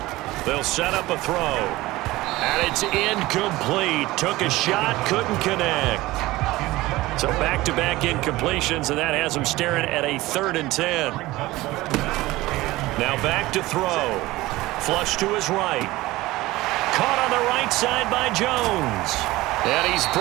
They'll set up a throw. And it's incomplete. Took a shot, couldn't connect. So back-to-back incompletions, and that has them staring at a 3rd and 10. Now back to throw. Flush to his right. Caught on the right side by Jones. And he's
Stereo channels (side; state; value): left; quieter; 18.7 dB